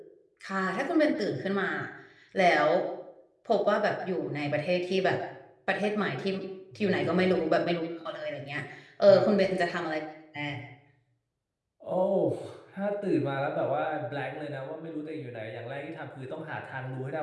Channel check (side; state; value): both; identical; correlation 1.00